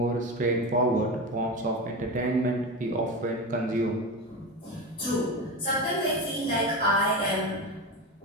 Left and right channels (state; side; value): normal; both; correlation 0.22